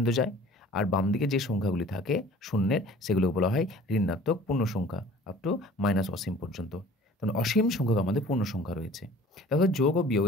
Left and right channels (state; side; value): normal; both; correlation 0.48